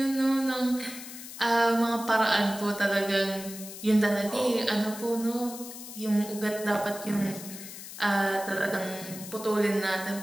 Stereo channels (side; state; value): left; noise; hiss, 12 dB below the sound